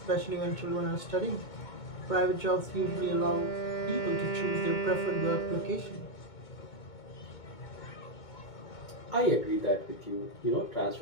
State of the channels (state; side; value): late; right; 2.2 ms